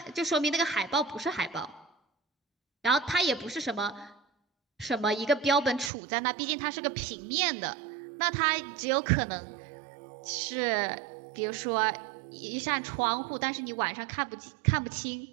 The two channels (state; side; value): drops out; left; at 5.9 s